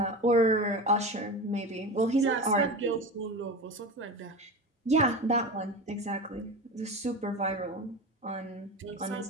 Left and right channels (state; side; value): normal; both; correlation 0.27